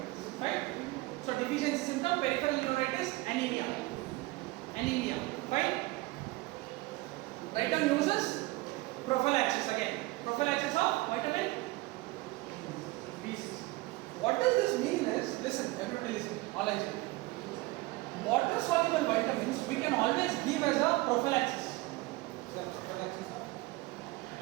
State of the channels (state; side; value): quieter; left; 21.4 dB